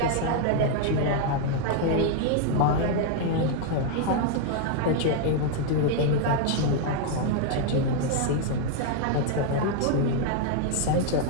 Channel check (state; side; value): different; both; correlation 0.00